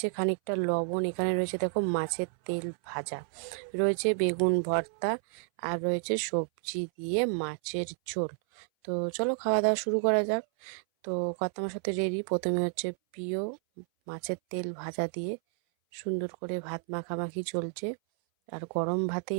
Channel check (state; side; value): silent; left; 57 dB below the other